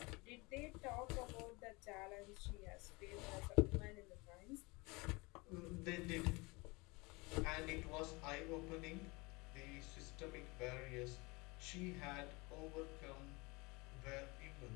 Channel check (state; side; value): quieter; right; 25.5 dB